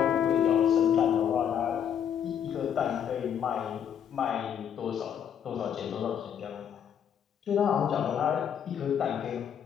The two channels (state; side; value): quieter; right; 8.7 dB